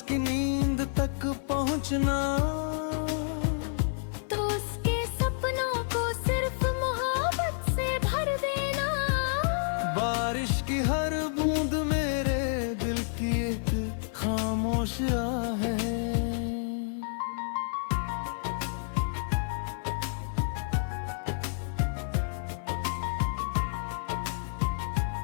नींद तक पहुँचना, तो उसके सपनों को सिर्फ मोहब्बत से भर देना। बारिश की हर बूंद मेरे दिल की एक खामोश आह है।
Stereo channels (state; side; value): silent; right; 56 dB below the other